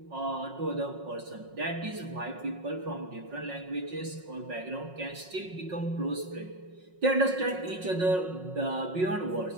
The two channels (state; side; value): late; left; 5.5 ms